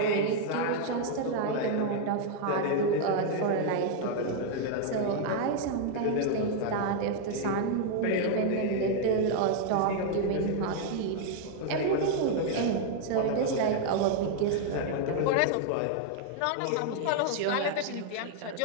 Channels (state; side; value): different; both; correlation 0.00